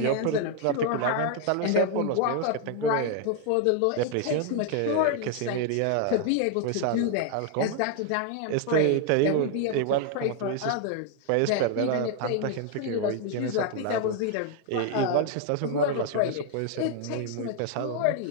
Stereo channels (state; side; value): different; both; correlation 0.00